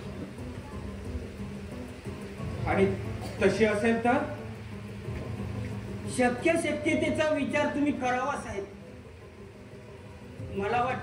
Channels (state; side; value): identical; both; correlation 1.00